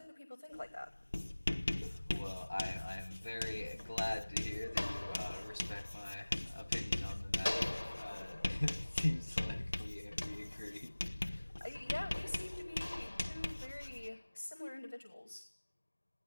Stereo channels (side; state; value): both; inverted; correlation -1.00